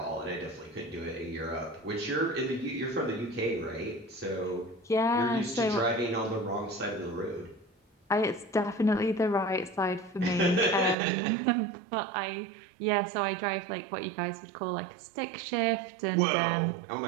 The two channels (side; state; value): left; drops out; at 11.0 s